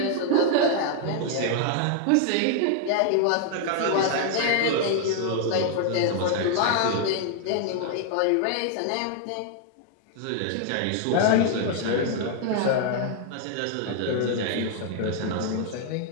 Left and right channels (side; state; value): both; different; correlation 0.00